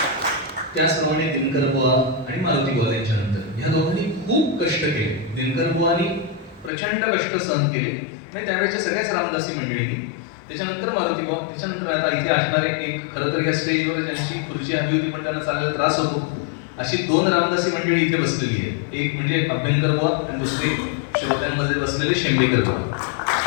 त्याचप्रमाणे दिनकर बुवा आणि मारुती बुवा यांच्यानंतर ह्या दोघांनी खूप कष्ट केले. दिनकर बुवांनी प्रचंड कष्ट सहन केले म्हणजे त्यावेळेच्या सगळ्याच रामदासी मंडळींनी. त्याच्यानंतर मारुती बुवा, त्याच्यानंतर आता इथे असणारे एक, खरं तर या स्टेजवर ज्यांची खुर्ची हवी होती पण त्यांना चालायला त्रास होतो, अशी दोन रामदासी मंडळी इथे बसलेली आहे. एक म्हणजे अभ्यंकर बुवा आणि दुसरे श्रोत्यांमध्ये बसलेले शेंबेकर बुवा.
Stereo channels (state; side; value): drops out; right; at 6.7 s